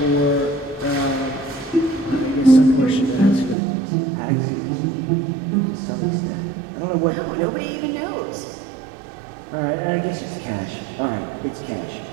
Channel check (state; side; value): drops out; left; at 3.6 s